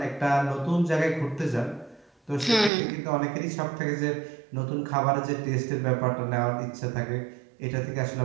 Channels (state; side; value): drops out; left; at 2.7 s